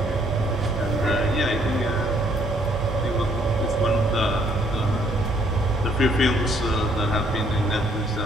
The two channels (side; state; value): both; normal; correlation 0.66